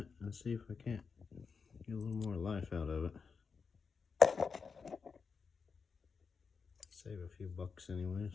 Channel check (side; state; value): right; quieter; 5.4 dB